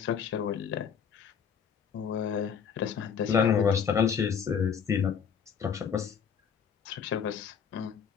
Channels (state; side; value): quieter; right; 7.2 dB